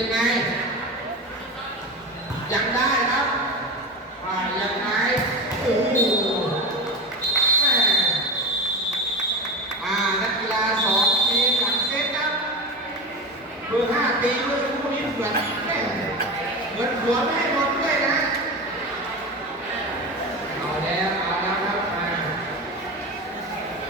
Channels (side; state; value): both; normal; correlation 0.25